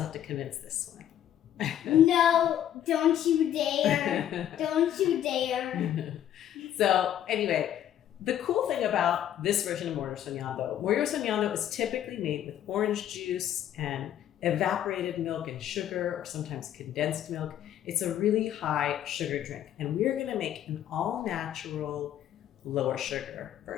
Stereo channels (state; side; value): quieter; right; 10.9 dB